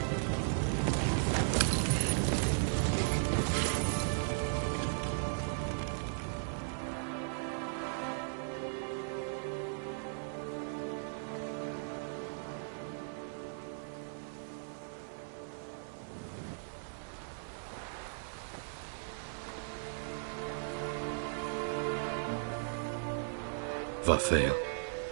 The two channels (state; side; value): silent; left; digital silence